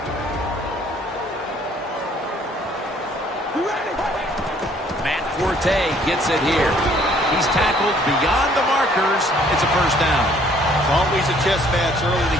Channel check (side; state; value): both; normal; correlation 0.61